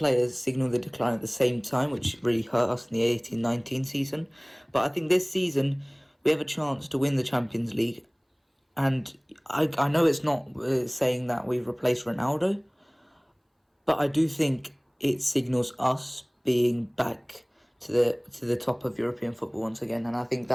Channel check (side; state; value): both; identical; correlation 1.00